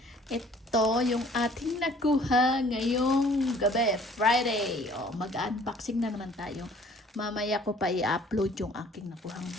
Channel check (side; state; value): both; normal; correlation 0.55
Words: Ito yung ating nakuha ngayong gabi, Friday. O, mag-unboxing na naman tayo. Mamaya ko pa i-upload yung aking nakuhang